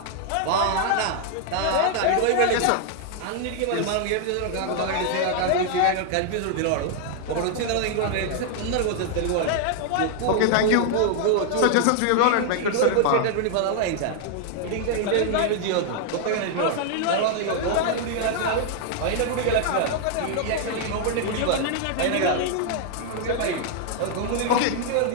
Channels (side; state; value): both; different; correlation 0.00